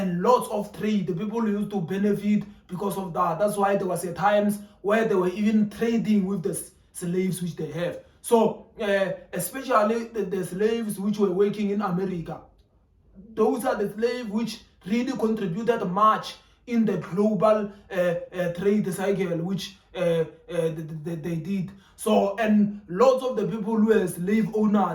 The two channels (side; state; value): both; identical; correlation 1.00